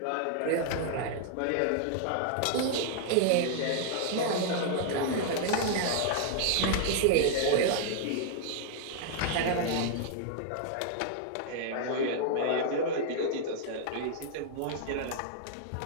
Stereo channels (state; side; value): different; both; correlation -0.01